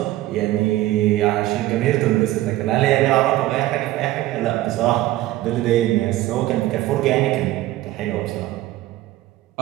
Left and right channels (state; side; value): quieter; left; 16.0 dB